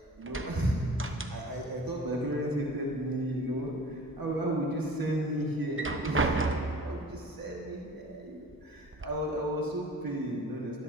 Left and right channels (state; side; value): normal; both; correlation 0.44